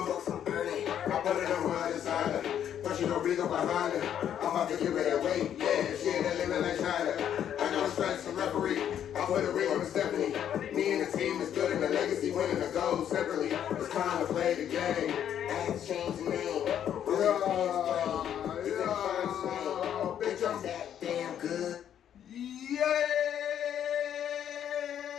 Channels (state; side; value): quieter; right; 9.8 dB